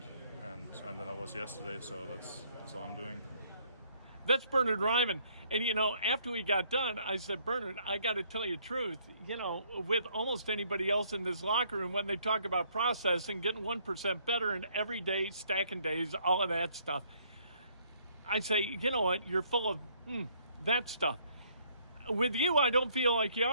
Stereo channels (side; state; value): both; inverted; correlation -0.65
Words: and than I was yesterday. So that's all I'm doing. That's Bernhard Raimann. And, after we got done, I said, Bernhard, I got to tell you the truth. With almost anybody else in this locker room, when they talk about processing, getting 1% better and every day, stacking days, all of that stuff, I say, you know what, you're full of that stuff. With you, I don't feel like you